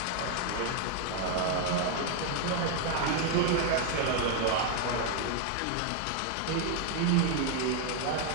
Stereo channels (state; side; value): different; both; correlation 0.01